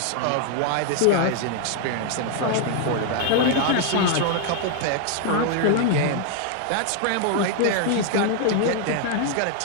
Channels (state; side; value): different; both; correlation 0.00